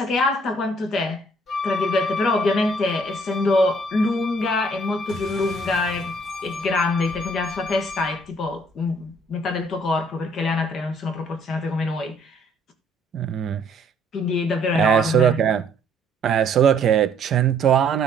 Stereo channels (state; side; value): normal; both; correlation 0.62